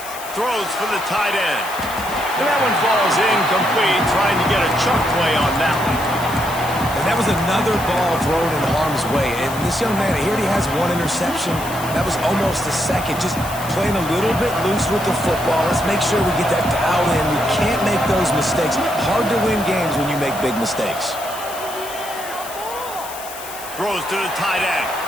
Throws for the tight end. And that one falls incomplete, trying to get a chunk play on that one. And that was another ball thrown in harm's way. And this young man, he already has one interception. That was almost a second. Just playing a little bit loose with the football. Let's make sure we get that dialed in. We can't make those mistakes. Hard to win games when you make big mistakes. Throws to the tight end.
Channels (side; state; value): left; noise; hiss, 13 dB below the sound